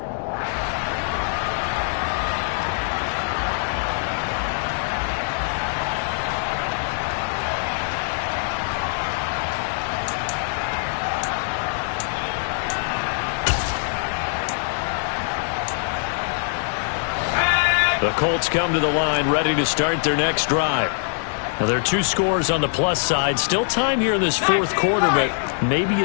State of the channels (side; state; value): right; silent; digital silence